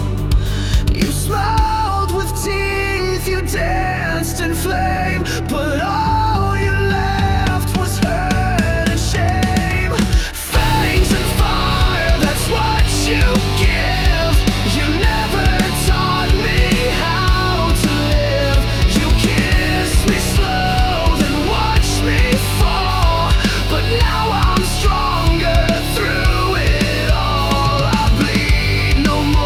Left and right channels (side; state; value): both; identical; correlation 1.00